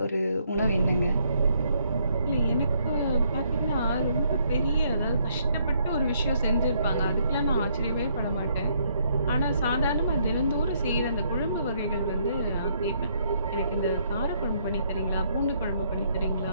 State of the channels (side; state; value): both; inverted; correlation -0.70